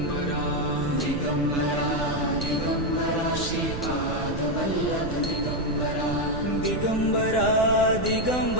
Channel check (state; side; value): noise; right; rumble, 6 dB below the sound